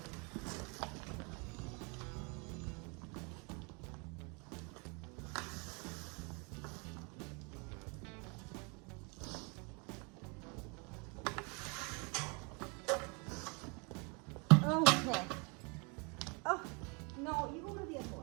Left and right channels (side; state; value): left; quieter; 32.1 dB